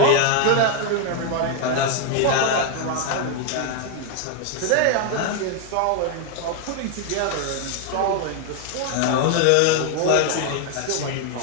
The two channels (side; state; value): both; different; correlation 0.01